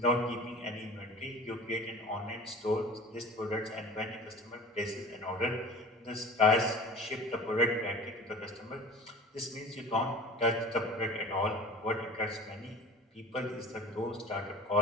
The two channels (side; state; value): both; normal; correlation 0.39